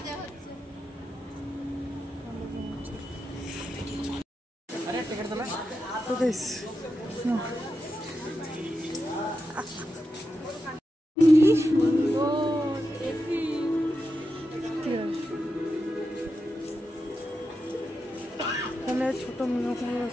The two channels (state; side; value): normal; both; correlation 0.88